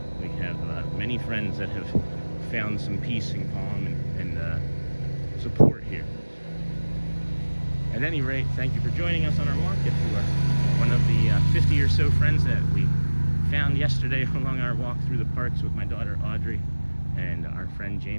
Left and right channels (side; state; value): both; inverted; correlation -1.00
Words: we have many friends that have found some peace and calm and support here. At any rate, thank you for joining us on our walk. If you are one of the 50 or so friends that we found yesterday along our walk through the parks with my daughter Audrey and our friend